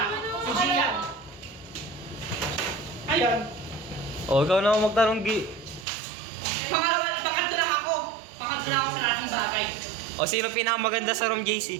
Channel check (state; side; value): drops out; left; at 5.9 s